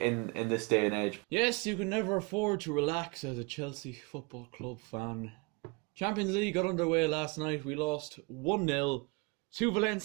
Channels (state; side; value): quieter; left; 29.0 dB